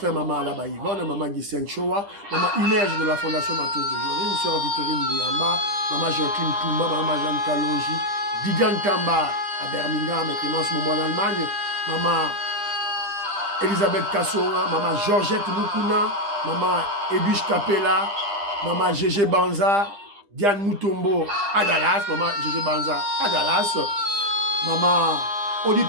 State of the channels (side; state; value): left; late; 10 ms